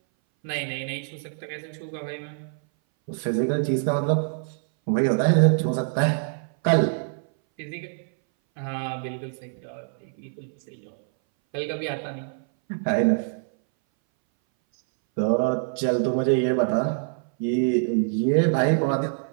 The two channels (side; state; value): left; silent; 60 dB below the other